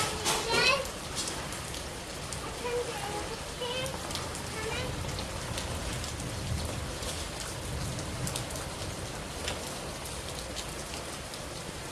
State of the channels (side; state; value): both; identical; correlation 1.00